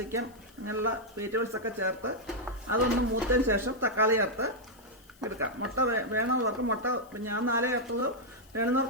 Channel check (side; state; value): left; noise; hiss, 28 dB below the sound